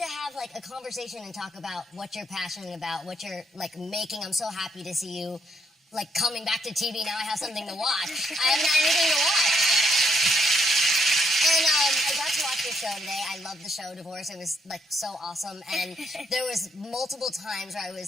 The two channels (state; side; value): normal; both; correlation 0.73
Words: have like a conversation and talk about what you're passionate about, what you're like making. I'm so happy to see you like coming back to TV. Now I have something to watch. I haven't had anything to watch. And I got to watch your show today. I loved the show, Divorce. It was like so awesome. And there was multiple times where I